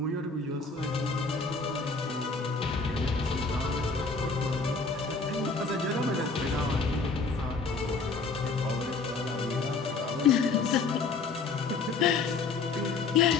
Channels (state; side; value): quieter; right; 4.3 dB